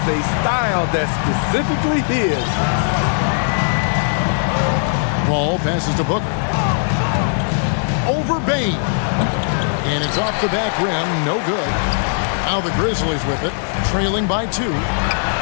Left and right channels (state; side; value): silent; right; 67 dB below the other